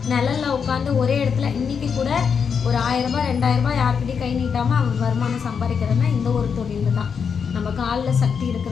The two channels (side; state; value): right; quieter; 6.4 dB